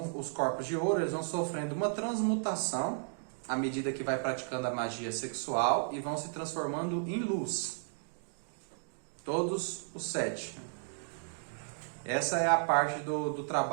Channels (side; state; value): left; silent; digital silence